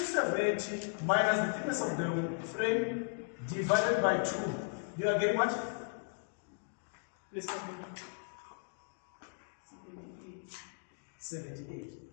minus the thickness of the frame divided by 2. You are getting what? Please come in. 78.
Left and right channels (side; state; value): right; silent; digital silence